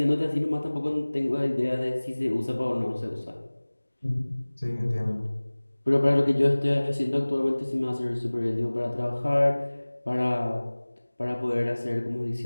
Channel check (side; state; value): both; inverted; correlation -1.00